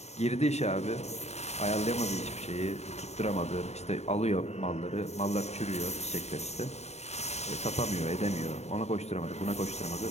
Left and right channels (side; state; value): right; late; 0.32 ms